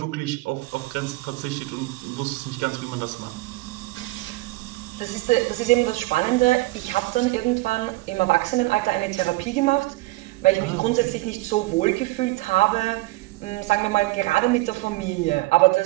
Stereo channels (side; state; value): left; quieter; 20.7 dB